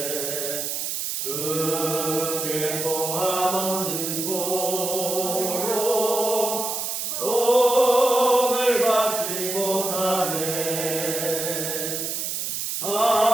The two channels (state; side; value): noise; right; hiss, 3 dB below the sound